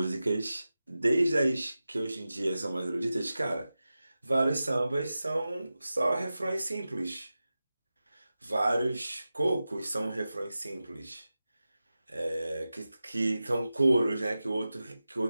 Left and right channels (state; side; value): inverted; both; correlation -0.94